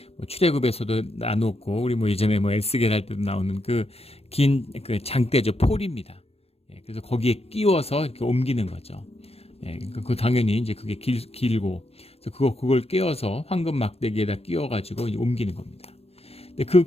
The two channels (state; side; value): late; right; 0.29 ms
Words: 출애굽에서도 나눴고 우리 예전에 에스겔 할 때도 나오는 그 긴 그 장대죠. 폴입니다. 그래서 거기에 끼워서 이렇게 옮기는 거죠. 그 당연히 이제 그게 길고, 그래서 그걸 끼워서 황금 막대기에다 끼워가지고 옮기는 겁니다. 근데 그